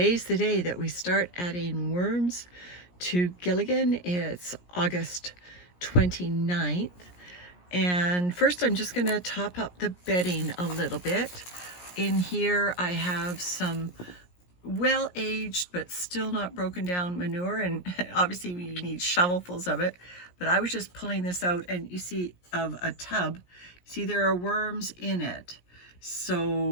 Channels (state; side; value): late; right; 17 ms